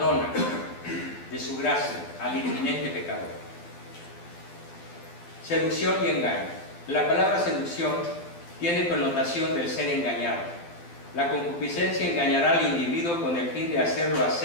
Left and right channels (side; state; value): right; late; 12 ms